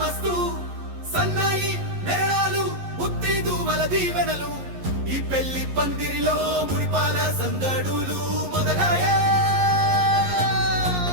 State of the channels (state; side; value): late; left; 11 ms